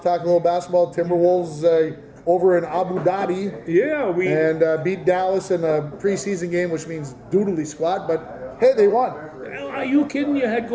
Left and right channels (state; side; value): identical; both; correlation 1.00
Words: well talk a little basketball. Timberwolves over in Abu Dhabi. Yeah, beat Dallas in a preseason game, which means doodly squat. But hey, they won. Are you kidding? You had